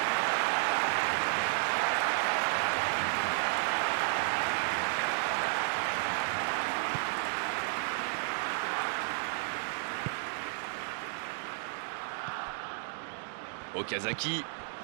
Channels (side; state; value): left; silent; digital silence